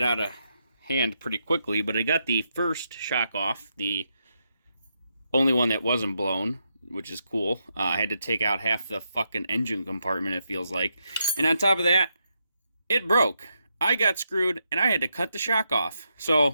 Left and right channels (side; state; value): both; inverted; correlation -0.82